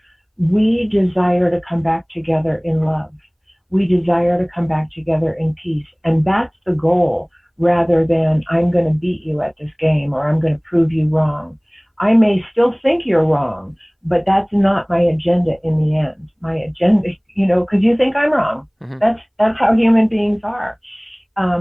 we desire to come back together in love. We desire to come back together in peace. And that's the goal, rather than I'm going to beat you at this game or I'm going to prove you wrong. I may still think you're wrong, but that's not my agenda in the end. My agenda, because you think I'm wrong. Hmm. That's how human beings are.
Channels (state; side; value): identical; both; correlation 1.00